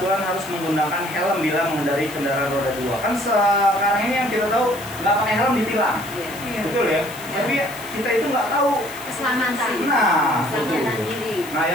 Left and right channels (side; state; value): left; noise; hiss, 15 dB below the sound